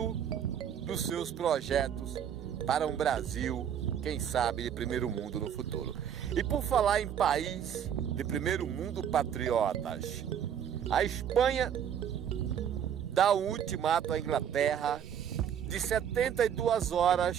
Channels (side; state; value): left; quieter; 8.9 dB